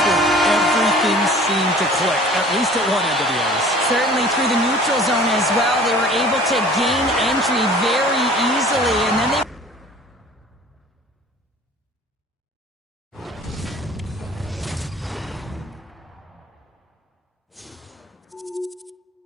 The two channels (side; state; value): both; normal; correlation 0.47